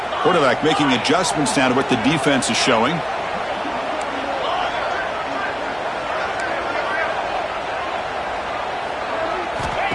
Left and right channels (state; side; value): identical; both; correlation 1.00